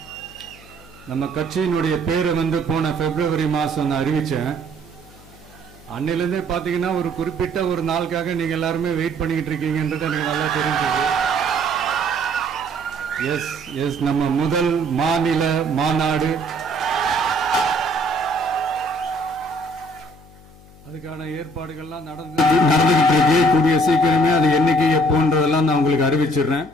நம்ம கட்சியினுடைய பேரை போன பிப்ரவரி மாசம் நான் அறிவிச்சேன். அன்னிலிருந்தே பாத்தீங்கன்னா ஒரு குறிப்பிட்ட ஒரு நாளுக்காக நீங்க எல்லாருமே வெயிட் பண்ணிக்கிட்டு இருக்கீங்கன்றது எனக்கு நல்லா தெரிஞ்சது. எஸ் எஸ் நம்ம முதல் மாநில மாநாடு, அதுக்கான ஏற்பாடுகள்லாம் நடந்துகிட்டு இருக்கு. கூடிய சீக்கிரமே அது என்னைக்கு எப்போன்றதெல்லாம் நான் உங்களுக்கு அறிவிச்சிடுறேன்.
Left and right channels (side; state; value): left; noise; hum, 23 dB below the sound